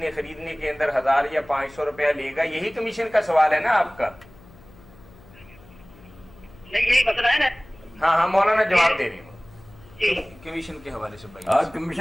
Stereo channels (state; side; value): noise; left; hum, 24 dB below the sound